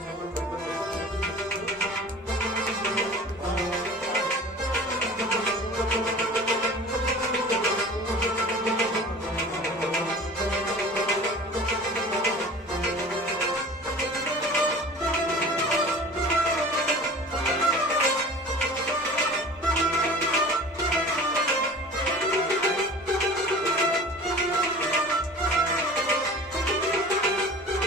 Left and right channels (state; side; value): normal; both; correlation 0.41